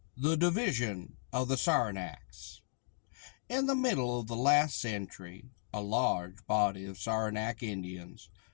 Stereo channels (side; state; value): right; silent; digital silence